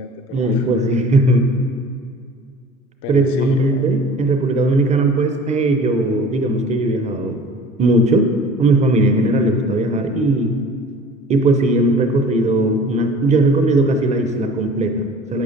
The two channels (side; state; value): both; normal; correlation 0.45